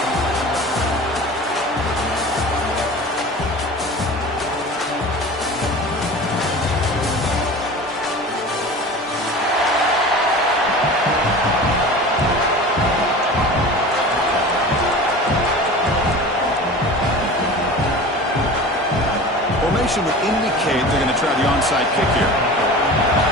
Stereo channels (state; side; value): normal; both; correlation 0.36